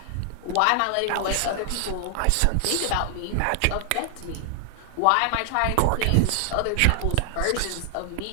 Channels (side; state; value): both; different; correlation 0.00